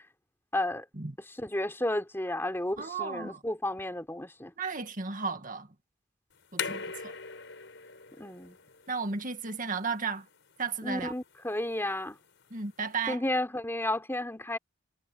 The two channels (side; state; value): both; normal; correlation 0.47